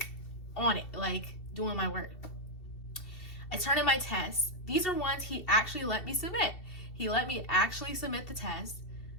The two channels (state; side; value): late; right; 2.7 ms